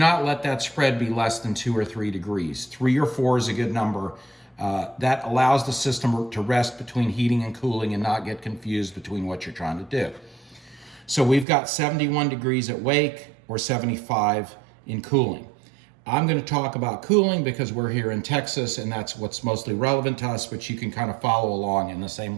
let that spread be less than 2 or 3 degrees. 3 or 4 is a good number. That allows the system to rest between heating and cooling and not get confused between what you're trying to do. So we've got 71 degrees at wake or 75 in cooling. I'm going to talk about cooling because we're here in Texas and that's what's mostly relevant to us, but you can kind of follow along, and the same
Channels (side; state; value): left; drops out; at 11.5 s